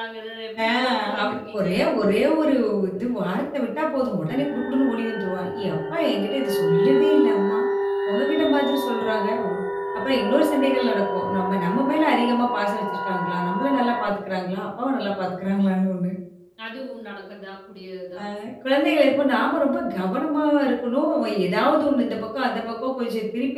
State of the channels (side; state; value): both; identical; correlation 1.00